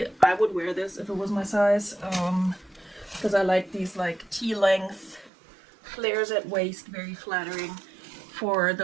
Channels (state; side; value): drops out; left; at 5.3 s